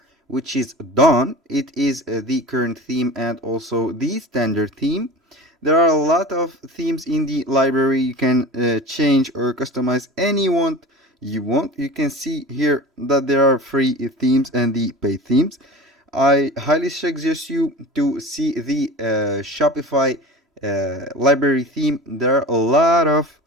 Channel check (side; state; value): both; normal; correlation 0.35